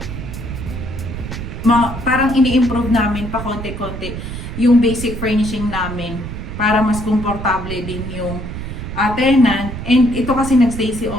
Parang ini-improve namin pa konti-konti yung basic furnishing namin para mas komportable din yung tenant. And ito kasi nagstay si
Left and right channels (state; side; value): noise; right; rumble, 7 dB below the sound